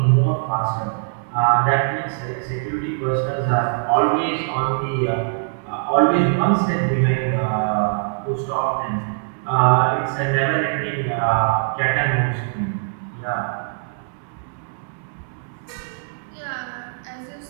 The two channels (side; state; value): left; silent; 64 dB below the other